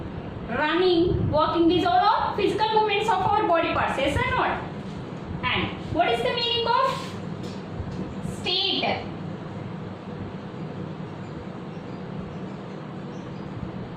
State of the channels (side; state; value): both; identical; correlation 1.00